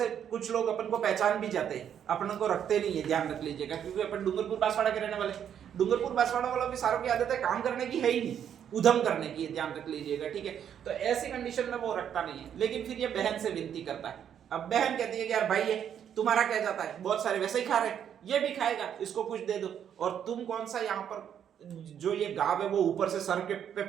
कुछ लोग अपन को पहचान भी जाते हैं, अपन को रखते नहीं है, ध्यान रख लीजिएगा, क्योंकि अपन डूंगरपुर बांसवाड़ा के रहने वाले, डूंगरपुर बांसवाड़ा वालों की सारों की आदत है काम करने की है ही नहीं, उधम करने की, ध्यान रख लीजिएगा। ठीक है, तो ऐसी कंडीशन में वो रखता नहीं है। लेकिन फिर ये बहन से विनती करता है। अब बहन कहती है कि यार भाई है तुम्हारा क्या जाता है, बहुत सारे वैसे ही खा रहे, ये भी खाएगा, इसको कुछ दे दो। और तुम कौन सा यहाँ पर जो ये गांव है वो ऊपर से सर के पे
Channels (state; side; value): quieter; left; 9.0 dB